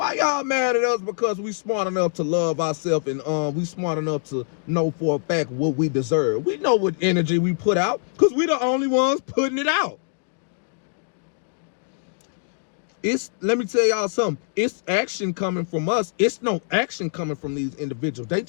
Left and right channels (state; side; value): silent; right; digital silence